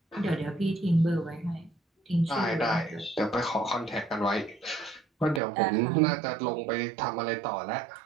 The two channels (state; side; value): drops out; left; at 5.4 s